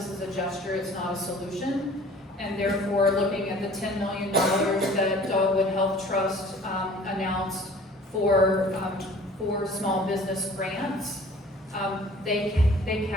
is a gesture, it's not a solution. And therefore, looking at the $10 million that Dogwood Health Trust announced for small business grants, they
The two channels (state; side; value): normal; both; correlation 0.49